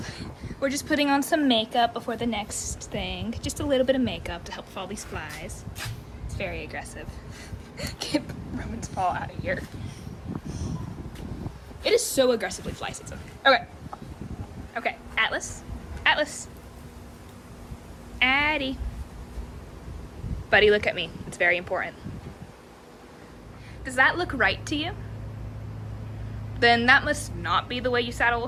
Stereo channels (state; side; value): identical; both; correlation 1.00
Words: We're just putting on some makeup before the next thing. Just a little bit of makeup to help with all these flies. It's very aggressive. Get Roman's paw out of here. It is so aggressively fly season. Okay. Okay, Atlas. Atlas. Addie. Buddy, look at me. It's very important. Does that look right to you? Then that must not be the way you saddle a